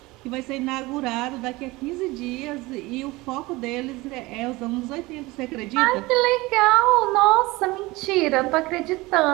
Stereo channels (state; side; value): quieter; left; 21.5 dB